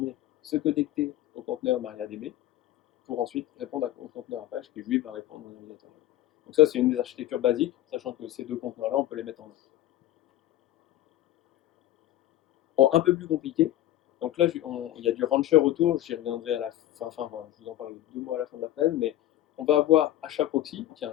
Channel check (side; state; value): right; quieter; 13.9 dB